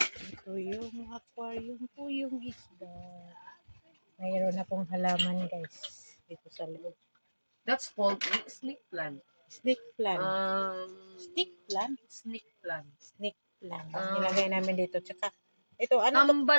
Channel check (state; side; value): inverted; both; correlation -1.00